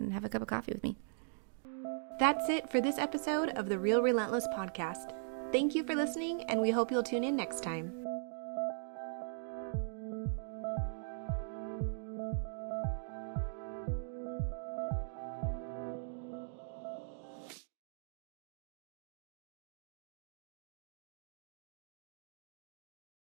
have a cup of coffee with me. That's it for this episode of the Real Relentless Podcast. Thank you for listening, and we hope you'll tune in next time.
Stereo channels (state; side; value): silent; left; digital silence